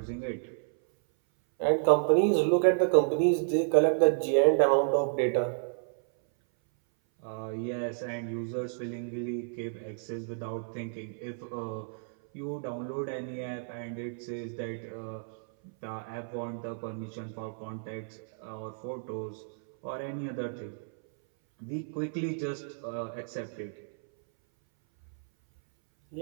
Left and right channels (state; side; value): silent; left; 57 dB below the other